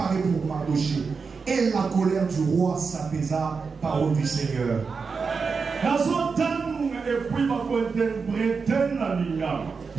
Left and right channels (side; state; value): left; quieter; 5.1 dB